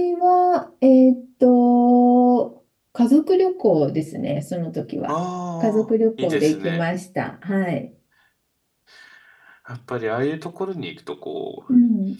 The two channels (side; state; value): both; identical; correlation 1.00